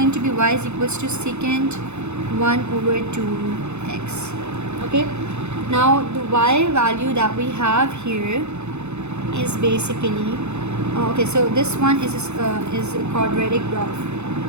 to be y is equals to secant 1 over 2x. Okay, now the y value that we have here is basically okay, so this one is a quadratic graph,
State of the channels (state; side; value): late; left; 0.82 ms